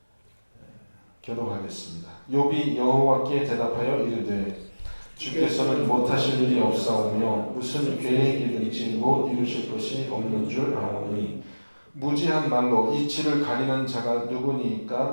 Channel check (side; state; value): both; inverted; correlation -1.00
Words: 교독하겠습니다. 욥이 여호와께 대답하여 이르되 주께서는 못하실 일이 없사오며 무슨 계획이든지 못 이루실 것이 없는 줄 아오니 무지한 말로 이치를 가리는 자가